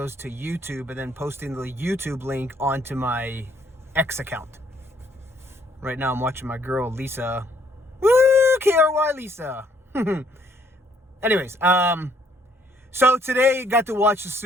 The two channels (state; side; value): normal; both; correlation 0.65